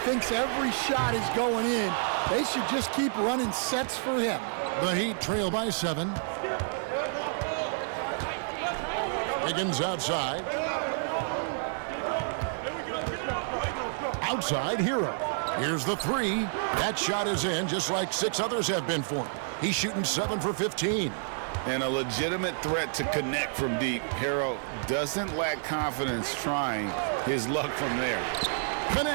Thinks every shot is going in. They should just keep running sets for him. The Heat trail by 7. Wiggins outside. Outside, Hero. Here's the 3. That shot is in, just like 6 others have been for him. He's shooting 7 for 15. And a legitimate threat to connect from deep. Hero doesn't lack confidence trying his luck from there.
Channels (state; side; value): silent; left; 58 dB below the other